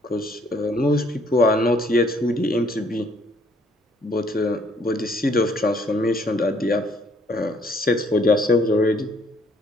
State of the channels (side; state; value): both; normal; correlation 0.64